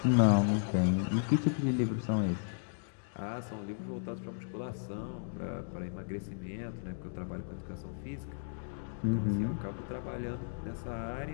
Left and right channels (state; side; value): silent; right; digital silence